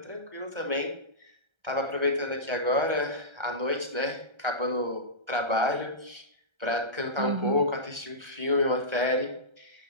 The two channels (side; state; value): left; late; 1.3 ms